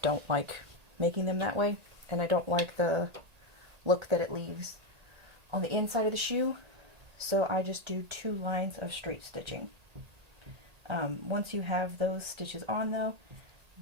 don't like making them that way, and I don't like the look that it leaves on the inside of the shoe, so I just do 2 lines of straight stitching. Once you have those stitches on though,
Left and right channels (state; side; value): late; left; 1.8 ms